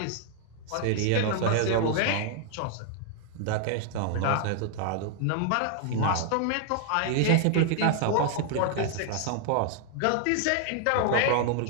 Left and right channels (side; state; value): both; different; correlation 0.00